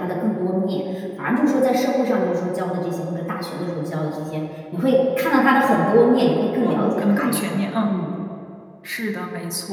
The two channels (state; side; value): identical; both; correlation 1.00